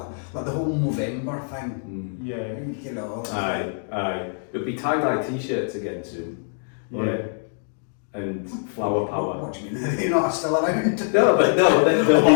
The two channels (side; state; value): right; silent; digital silence